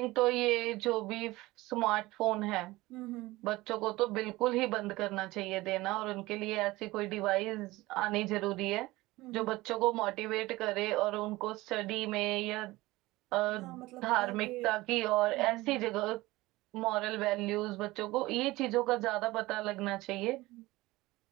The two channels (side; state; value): left; quieter; 19.6 dB